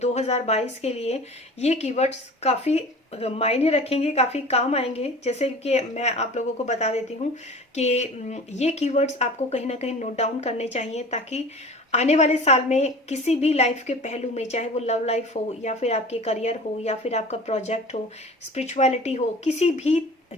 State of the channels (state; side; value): normal; both; correlation 0.40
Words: के लिए ये कीवर्ड्स काफ़ी मायने रखेंगे, काफ़ी काम आएंगे। जैसे कि मैं आप लोगों को बता देती हूँ कि ये कीवर्ड्स आपको कहीं ना कहीं नोट डाउन करने चाहिए, ताकि आने वाले साल में किसी भी लाइफ के पहलू में, चाहे वो लव लाइफ हो या फिर आपके करियर हो या फिर आपका प्रोजेक्ट हो, स्पिरिचुअलिटी हो, किसी